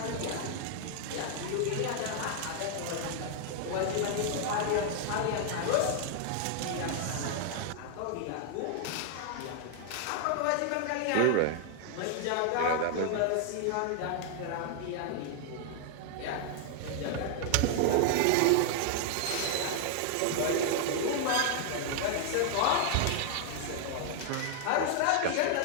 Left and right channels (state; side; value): different; both; correlation 0.00